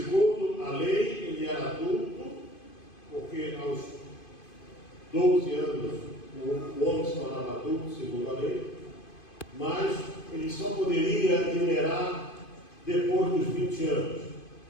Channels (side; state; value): right; late; 2.5 ms